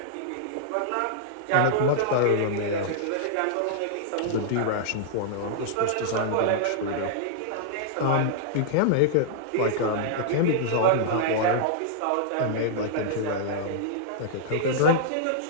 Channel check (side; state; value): both; different; correlation -0.01